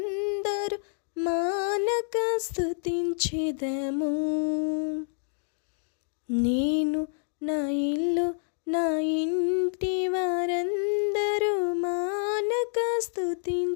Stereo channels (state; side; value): silent; right; digital silence